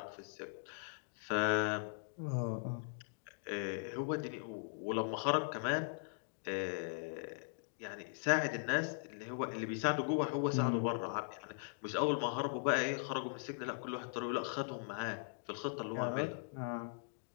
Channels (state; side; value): silent; right; digital silence